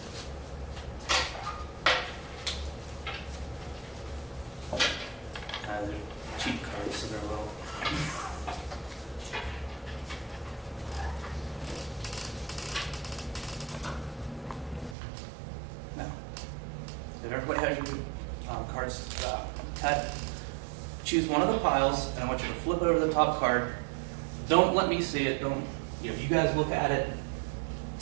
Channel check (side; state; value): left; drops out; at 15.0 s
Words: They're cheap cards, so they're low. Now, if everybody has your cards cut, choose one of the piles, and I want you to flip over the top card. Don't let me see it. Don't, you guys look at it,